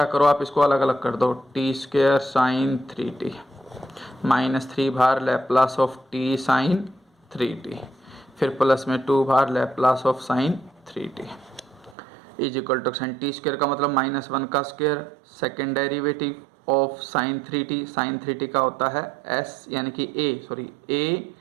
करो, आप इसको अलग अलग कर दो, t square sine 3t minus 3 बार Laplace of t sine 3t, फिर प्लस में 2 बार Laplace of sine 3t is equal to sine t square का मतलब -1 का square, second derivative of sine 3t। Sine 3t का होता है s यानी कि a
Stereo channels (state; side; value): drops out; left; at 12.0 s